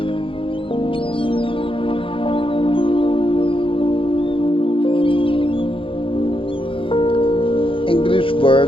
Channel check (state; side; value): late; right; 0.25 ms